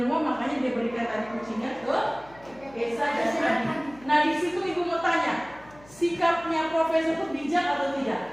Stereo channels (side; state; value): left; noise; hum, 24 dB below the sound